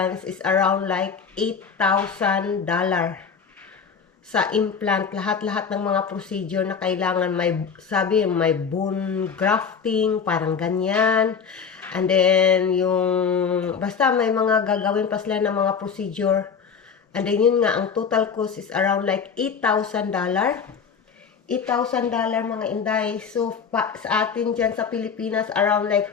is around $8,000 sa implant, lahat-lahat ng mga procedure na kailangan. May bone grafting, parang ganyan. And then, basta may mga gagawin pa sila ng mga procedure. And then, yun nga, ang total cost is around $8,000. $8,000 mga inday. So, sa atin dyan sa Pilipinas, around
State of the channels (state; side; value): quieter; right; 6.3 dB